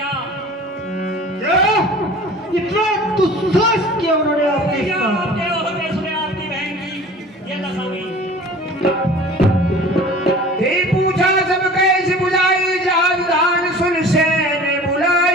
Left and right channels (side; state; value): both; normal; correlation 0.43